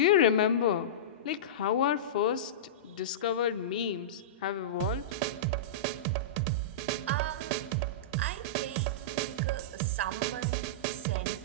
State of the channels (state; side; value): normal; both; correlation -0.17